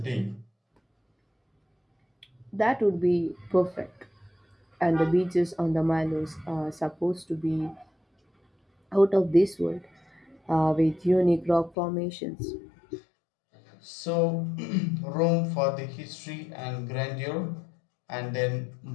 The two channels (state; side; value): drops out; right; at 11.8 s